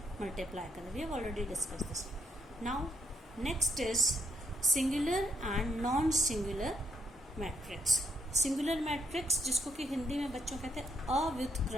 मल्टीप्लाई करें। We have already discuss this. Now next is singular and non singular matrix. Singular matrix जिसको कि हिंदी में बच्चों कहते हैं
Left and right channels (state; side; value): normal; both; correlation 0.73